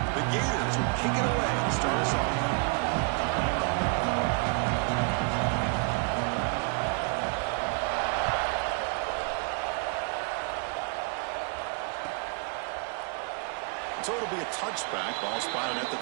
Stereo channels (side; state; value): left; quieter; 37.8 dB